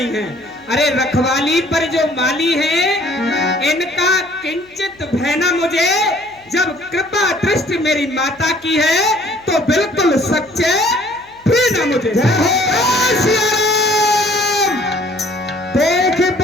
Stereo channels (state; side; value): noise; left; hum, 30 dB below the sound